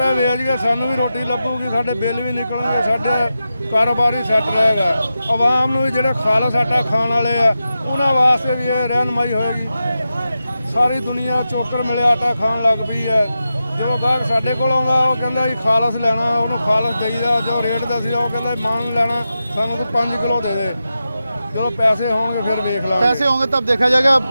ਵੇਚ ਕੇ ਸਾਨੂੰ ਵੀ ਰੋਟੀ ਲੱਗੂਗੀ, ਸਾਡੇ ਬਿੱਲ ਵੀ ਨਿਕਲਣਗੇ, ਸਾਡੇ ਕਾਰੋਬਾਰ ਹੀ ਸੈੱਟ ਰਹੇਗਾ। ਆਵਾਮ ਨੂੰ ਵੀ ਜਿਹੜੇ ਖਾਲਸ ਆਟਾ ਖਾਣ ਵਾਲੇ ਆ ਉਹਨਾਂ ਵਾਸਤੇ ਵੀ ਇਹ ਰਹਿਨਮਾਈ ਹੋਏਗੀ। ਸਾਰੀ ਦੁਨੀਆ ਚੋਕਰ ਮਿਲਿਆ ਆਟਾ ਖਾਣ ਲੱਗ ਪਈ ਹੈ। ਜੋ ਗਾਹਕ ਸਾਡੇ ਕੋਲ ਆਉਂਦਾ ਉਹ ਕਹਿੰਦਾ ਜੀ ਖਾਲਸ ਲੈਣਾ, ਉਹਨੂੰ ਖਾਲਸ ਦੇਈਦਾ। ਜੋ ਰੇਟ ਦੱਸਿਆ ਉਹ ਕਹਿੰਦਾ ਮਾਨ ਲੈਣਾ ਸਾਨੂੰ ਤੂੰ 5 ਕਿਲੋ ਦੇ ਦੇ। जो पैसे होंगे फिर देख लो, पैसे होंगे तब देखा जाएगा।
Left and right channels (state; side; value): inverted; both; correlation -0.91